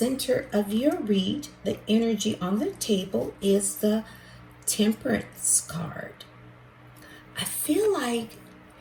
of your read, the energy on the table is the Temperance card. I feel like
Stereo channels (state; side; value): identical; both; correlation 1.00